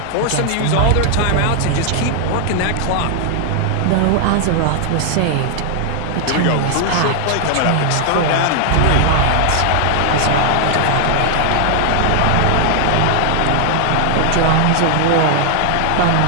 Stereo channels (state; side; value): different; both; correlation 0.00